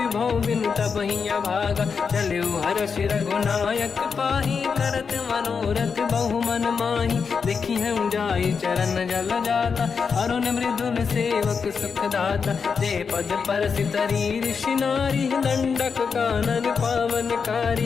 बिनु तबहि अभागा। चलऊ हर्ष रघुनायक पाहि करत मनोरथ बहु मन माहि। देखी हम जाई चरण जल जाता अरुण मृदुल सेवक सुख दाता। जे पद पर सितरी ऋषि नारी दंडक कानन पावनकारी।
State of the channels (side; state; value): right; quieter; 5.8 dB